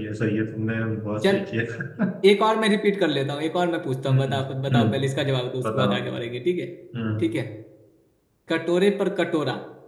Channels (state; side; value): identical; both; correlation 1.00